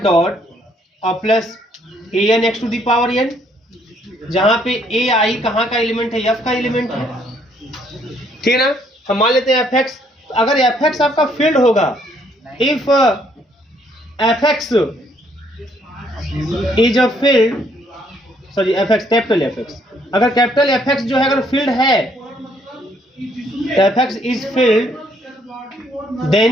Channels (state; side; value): normal; both; correlation 0.68